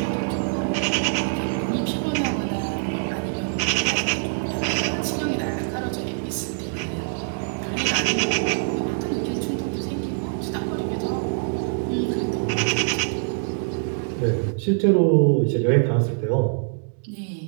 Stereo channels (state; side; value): silent; left; digital silence